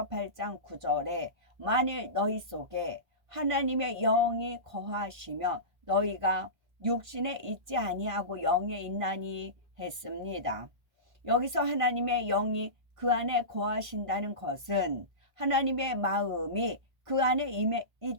8장 9절에 만일 너희 속에 하나님의 영이 거하시면 너희가 육신에 있지 아니하고 영에 있나니 했습니다. 여기서 하나님의 영이 그 안에 거하신다는 것은 하나님의 마음이 그 안에 임해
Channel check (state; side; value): late; left; 1.5 ms